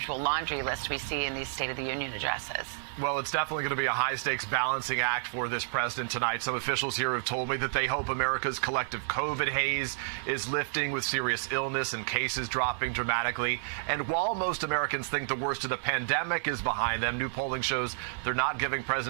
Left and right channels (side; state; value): left; silent; digital silence